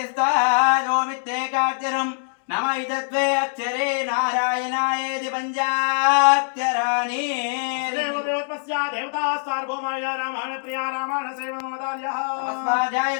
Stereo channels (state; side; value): silent; right; digital silence